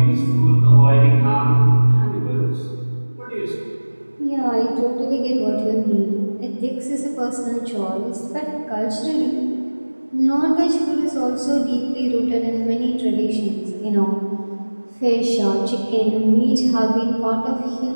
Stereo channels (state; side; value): inverted; both; correlation -1.00